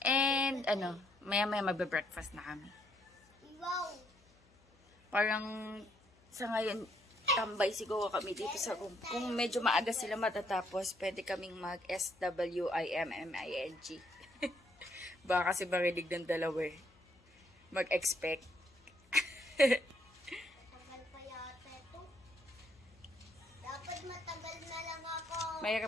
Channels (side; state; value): left; noise; hum, 30 dB below the sound